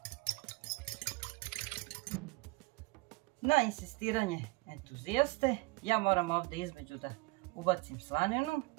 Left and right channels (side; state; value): left; quieter; 24.9 dB